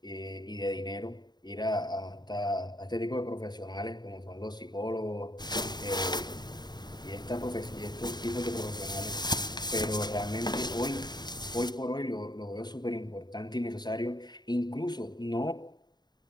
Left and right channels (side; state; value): right; late; 0.20 ms